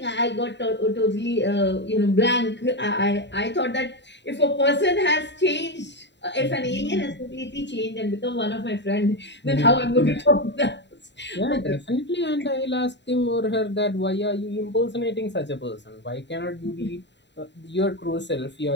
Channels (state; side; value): late; right; 0.52 ms